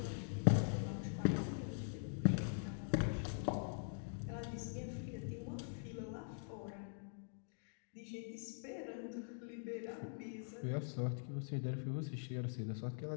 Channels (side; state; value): right; silent; digital silence